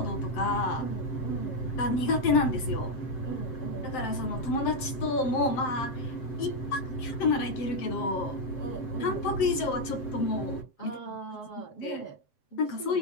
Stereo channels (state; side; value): late; right; 7.8 ms